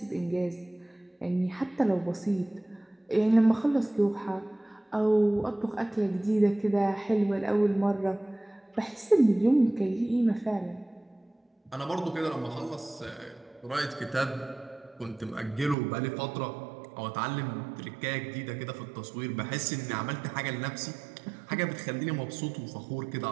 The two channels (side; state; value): left; drops out; at 15.8 s